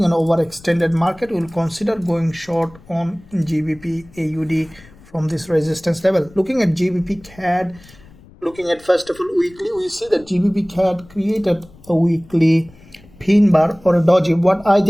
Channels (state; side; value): noise; left; rumble, 24 dB below the sound